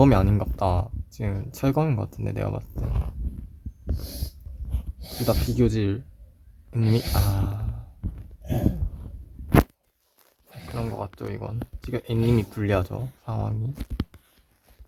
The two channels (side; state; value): both; identical; correlation 1.00